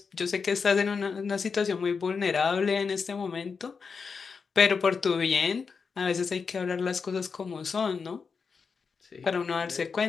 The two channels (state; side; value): quieter; right; 5.4 dB